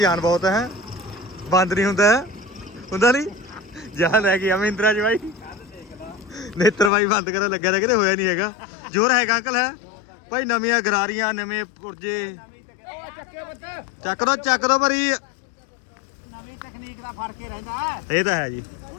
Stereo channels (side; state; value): right; drops out; at 6.9 s